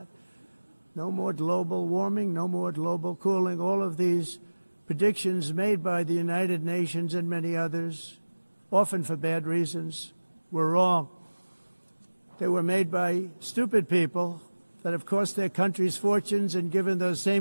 No more global warming, no more global cooling. All of these predictions made by the United Nations and many others, often for bad reasons, were wrong. They were made by stupid people that have cost their countries fortunes and given those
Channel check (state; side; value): inverted; both; correlation -1.00